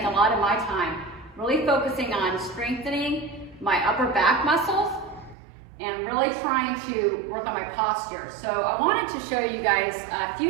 a lot of my time really focusing on strengthening my upper back muscles and really trying to work on my posture. So I wanted to show you guys a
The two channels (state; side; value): drops out; left; at 5.4 s